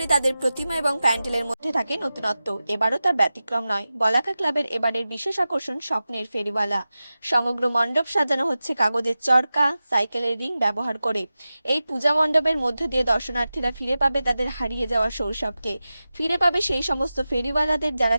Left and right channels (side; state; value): both; inverted; correlation -0.94